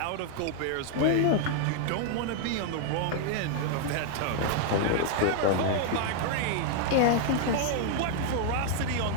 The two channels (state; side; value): different; both; correlation -0.01